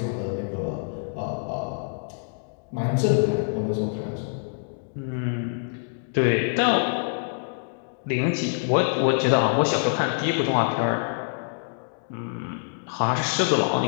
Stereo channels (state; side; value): silent; right; digital silence